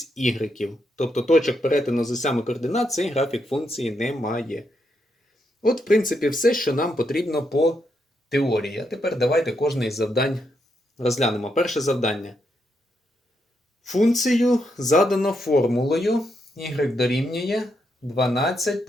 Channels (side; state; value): both; normal; correlation 0.80